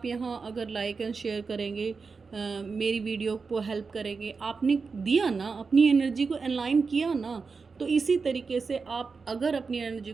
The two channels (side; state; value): left; quieter; 4.8 dB